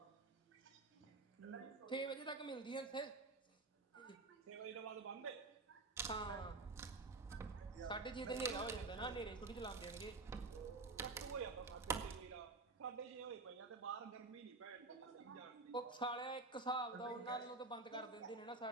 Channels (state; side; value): quieter; left; 3.6 dB